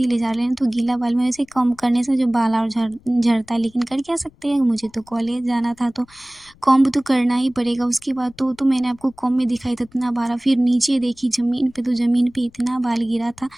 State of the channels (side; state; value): left; noise; rumble, 29 dB below the sound